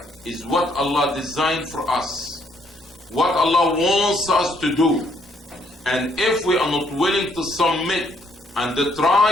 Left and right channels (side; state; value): both; normal; correlation 0.69